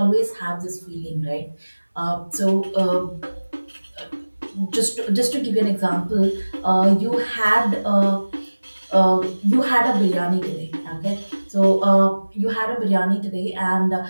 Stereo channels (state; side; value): inverted; both; correlation -1.00